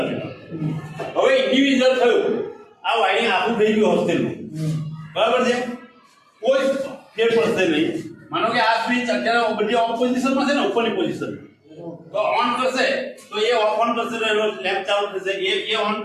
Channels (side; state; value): both; identical; correlation 1.00